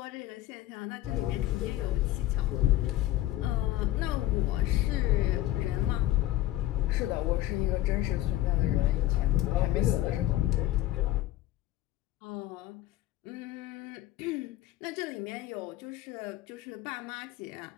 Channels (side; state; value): right; quieter; 14.9 dB